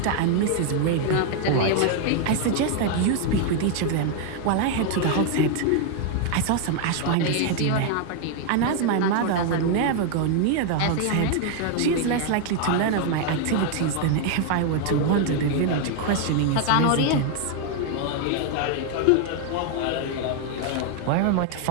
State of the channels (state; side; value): different; both; correlation 0.00